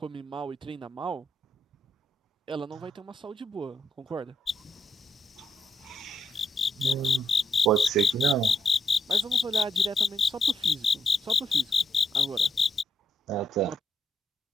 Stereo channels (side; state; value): both; normal; correlation 0.79